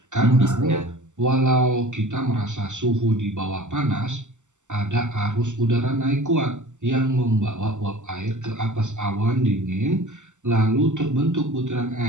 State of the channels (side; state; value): left; late; 0.84 ms